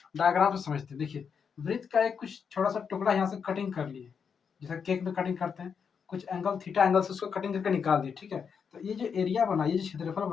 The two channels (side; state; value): right; quieter; 6.5 dB